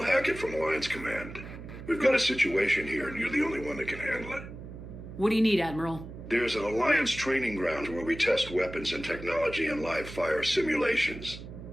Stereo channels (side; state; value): right; noise; hum, 12 dB below the sound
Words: Hackett from Alliance Command. We've got a situation here, and you're the only one that can handle it. What do you need, Admiral? There's an Alliance training ground where we test weapons and technology in live fire simulations.